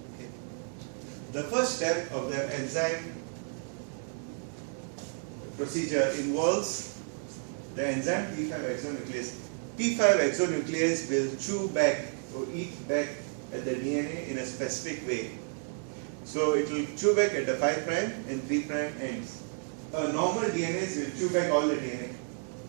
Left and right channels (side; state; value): left; silent; 57 dB below the other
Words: Okay. The first step of the enzyme procedure involves the enzyme T5 exonuclease. T5 exonuclease will chew back or eat back at the DNA in a specific way. So it will chew back at the 5' and 3' ends. Normal DNAs will chew back all the DNA.